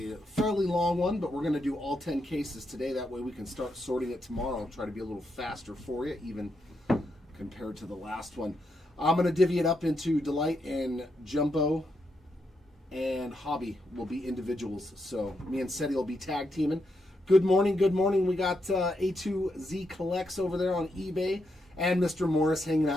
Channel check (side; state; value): both; normal; correlation 0.82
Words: a fairly long one, but we're going to do all 10 cases today. That way we can start sorting it tomorrow and try to be a little faster for you, even compared to the last one. I'm going to divvy it up into delight and jumbo, and hobby will be individuals. So me and Seti will be tag teaming. Good morning, good morning. We got A2Z Collects over there on eBay, and Mr. Morris hanging